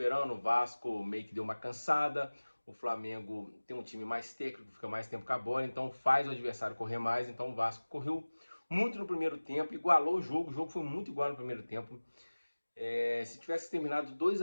o Vasco meio que deu uma cansada. O Flamengo tem um time mais técnico, fica mais tempo com a bola, então faz o adversário correr mais. Então o Vasco correu muito no primeiro tempo, igualou o jogo foi muito igual no primeiro tempo. Se tivesse terminado 2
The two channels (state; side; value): inverted; both; correlation -1.00